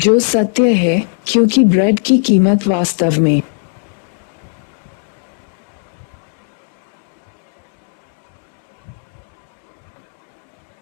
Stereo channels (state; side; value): silent; right; digital silence